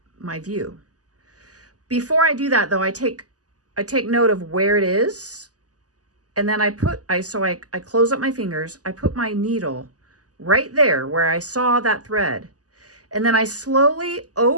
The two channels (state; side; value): late; left; 0.67 ms